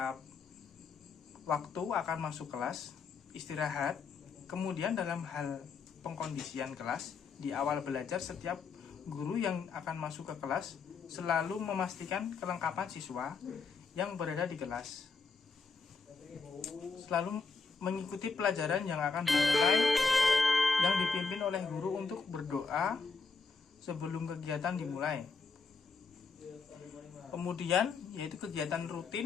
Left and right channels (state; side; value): quieter; right; 4.7 dB